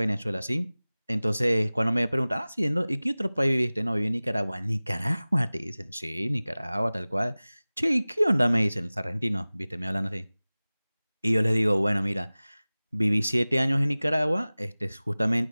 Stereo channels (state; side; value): inverted; both; correlation -0.99